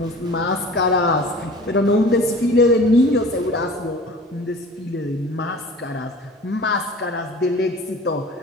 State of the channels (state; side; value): normal; both; correlation 0.42